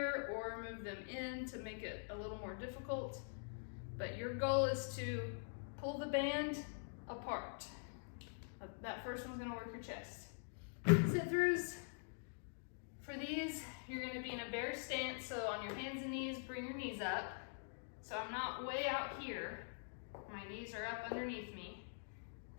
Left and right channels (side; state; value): right; silent; digital silence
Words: or move them in to make it a little more difficult. But your goal is to pull the band apart. That first one's gonna work your chest. Sit-throughs. For these, you're gonna be in a bear stance, so on your hands and knees, bring your knees up. So I'm not way out here. My knees are up underneath me.